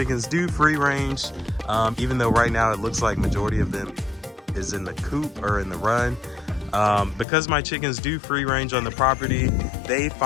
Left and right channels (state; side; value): drops out; right; at 7.2 s